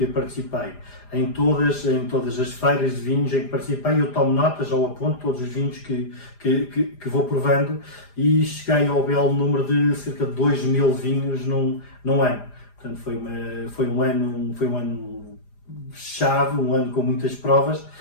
participei, em todas as feiras de vinhos em que participei, eu tomo notas ou aponto todos os vinhos que vou provando e cheguei ao belo número de cerca de 2.000 vinhos num ano. Portanto, foi um ano chave, um ano com muitas provas,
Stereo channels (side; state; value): right; late; 4.9 ms